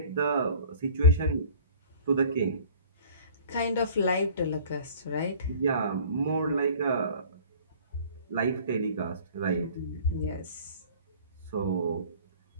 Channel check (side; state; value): both; inverted; correlation -0.47